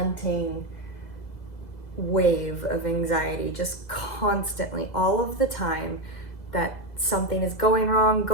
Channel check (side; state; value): right; late; 2.0 ms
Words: wave of anxiety, just constantly, all of the time, that something is going wrong,